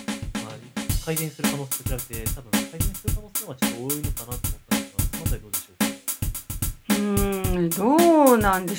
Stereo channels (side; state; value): both; identical; correlation 1.00